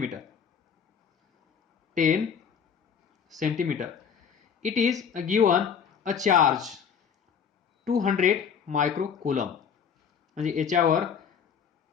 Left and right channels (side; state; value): right; quieter; 7.1 dB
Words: 10 centimetre. It is given a charge 200 micro coulomb. म्हणजे याच्यावर